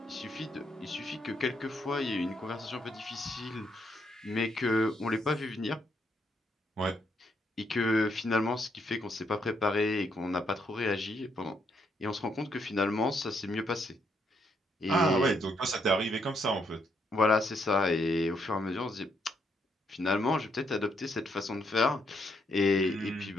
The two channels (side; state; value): both; normal; correlation 0.75